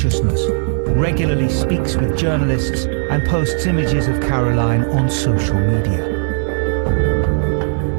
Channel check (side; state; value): left; silent; digital silence